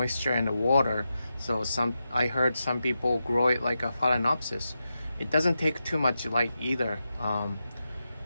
in the water. So I heard some people grow it like a phalaenopsis. It doesn't take too much light either.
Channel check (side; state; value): both; inverted; correlation -0.89